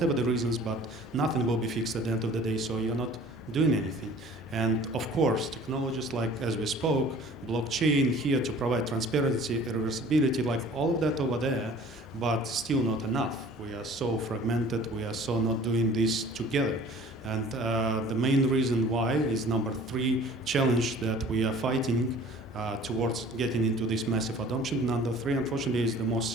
the reasons, but nothing will be fixed at the end of the day, so you're not doing anything. And of course, technologies like, as we spoke, blockchain here to provide transparency, reversibility, like all of that over there, but still not enough. We are so fragmented, we are so not doing this together. And the main reason why is number 3 challenge that we are fighting towards getting into this massive adoption. Number 3, unfortunately, is the most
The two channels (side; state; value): both; normal; correlation 0.48